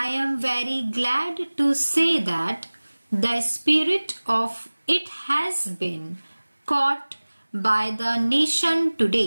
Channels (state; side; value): inverted; both; correlation -1.00